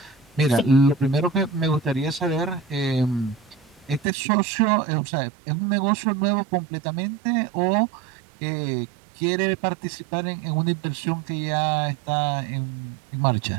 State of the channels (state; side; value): drops out; left; at 4.0 s